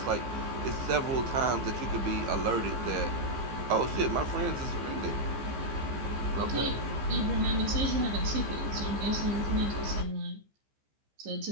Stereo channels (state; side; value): late; left; 15 ms